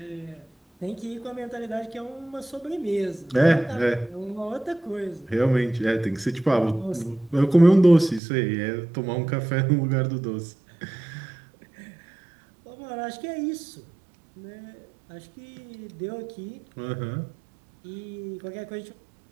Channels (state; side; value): drops out; left; at 8.2 s